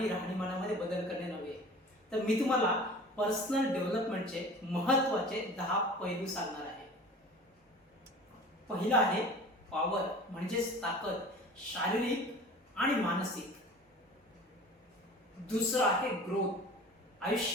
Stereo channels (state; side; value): normal; both; correlation 0.41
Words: राहणीमानामध्ये बदल करणे नव्हे, तर मी तुम्हाला पर्सनल डेव्हलपमेंटचे महत्त्वाचे 10 पैलू सांगणार आहे. पहिला आहे पॉवर म्हणजेच ताकद, शारीरिक आणि मानसिक. दुसरं आहे ग्रोथ,